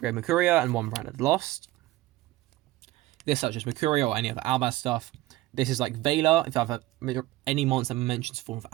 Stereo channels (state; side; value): quieter; left; 17.5 dB